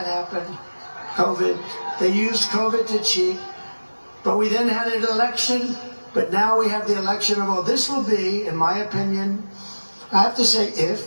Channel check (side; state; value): both; inverted; correlation -1.00